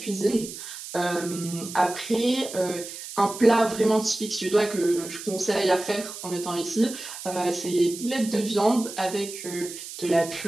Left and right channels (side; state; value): right; noise; hiss, 11 dB below the sound